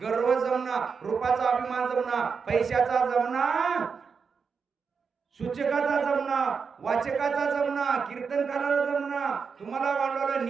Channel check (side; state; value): left; quieter; 5.7 dB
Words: गर्व जमना, रूपाचा अभिमान जमना, पैशाचा जमना, सूचकाचा जमना, वाचकाचा जमना, कीर्तनकाराला जमना. तुम्हाला वाढवलं